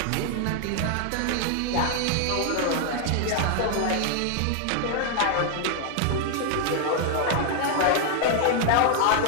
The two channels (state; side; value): different; both; correlation 0.00